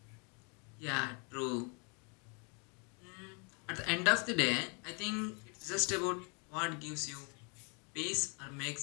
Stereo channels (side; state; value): right; quieter; 34.6 dB